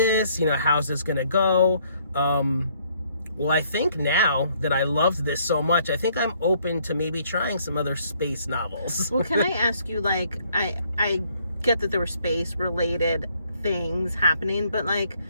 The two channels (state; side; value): inverted; both; correlation -0.66